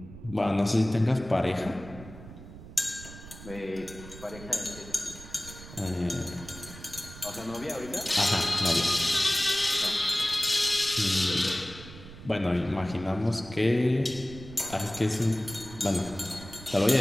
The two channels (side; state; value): right; noise; rumble, 15 dB below the sound